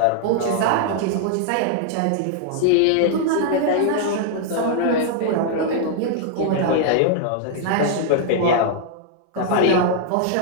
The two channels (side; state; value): both; different; correlation -0.01